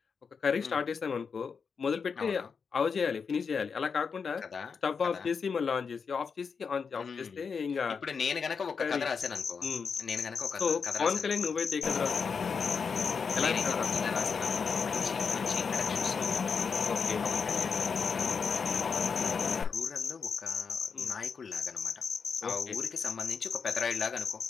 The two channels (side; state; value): right; quieter; 5.7 dB